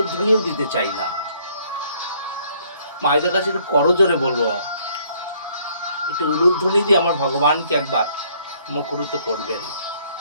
দিতে চাই না। মায়েদের কাছে একটু করজোরে বলবো, একটু উলুধ্বনি দিয়ে আমার ভগবানকে একবার মুখরিত করবেন।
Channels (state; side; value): inverted; both; correlation -0.64